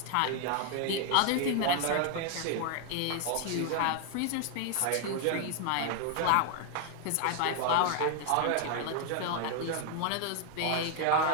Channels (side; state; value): both; different; correlation 0.01